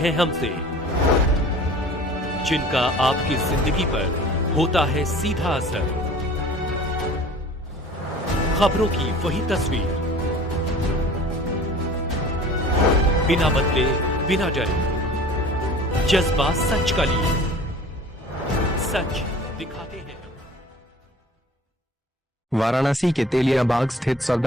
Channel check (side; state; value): both; normal; correlation 0.45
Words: हमसे, जिनका आपकी जिंदगी पर होता है सीधा असर। खबरों की वही तस्वीर, बिना बदले बिना डरे, जज्बा सच का लिए, सच दिखाते हैं। वाराणसी के तेलियाबाग स्थित